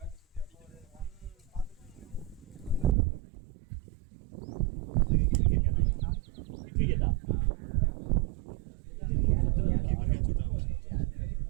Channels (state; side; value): drops out; left; at 3.0 s